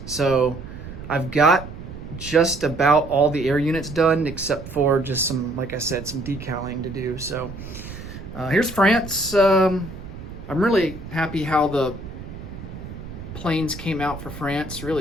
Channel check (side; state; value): right; noise; rumble, 12 dB below the sound